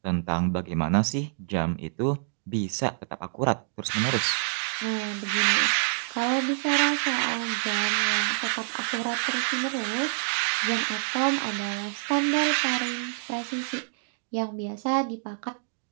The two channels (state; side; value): silent; left; digital silence